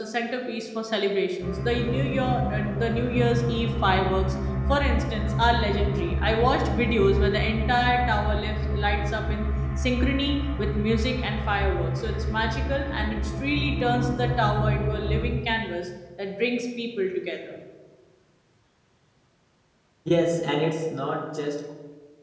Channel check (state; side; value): identical; both; correlation 1.00